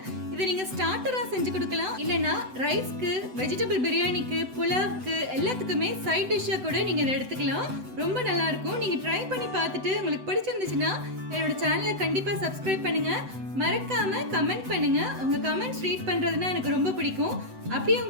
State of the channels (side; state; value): left; late; 7.9 ms